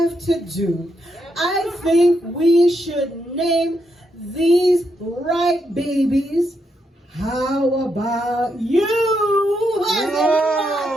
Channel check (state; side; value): normal; both; correlation 0.80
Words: to do. I think we should name these right babies. How about you?